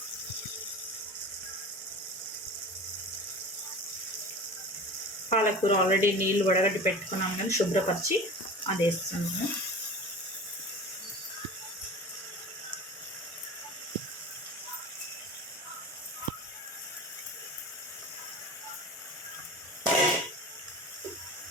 పాలకూర ఆల్రెడీ నీళ్ళు వడగట్టి పెట్టుకున్నాం కానీ శుభ్రపరిచి అది వేస్తున్నాను.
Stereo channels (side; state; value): both; normal; correlation 0.35